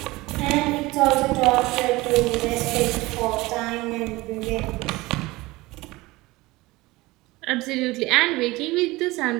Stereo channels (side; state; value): left; quieter; 20.7 dB